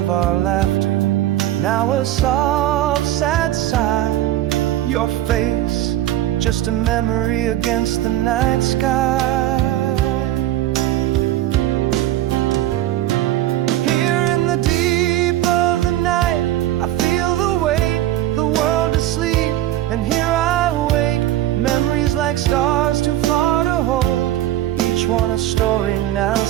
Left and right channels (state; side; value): quieter; left; 13.8 dB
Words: our laughter, now a soft, sad sigh. Your face, just a memory against the night sky. Here in the deep of the night, I feel the weight, the world asleep, and here I wake. Memories like stars too far to hold, each one a story now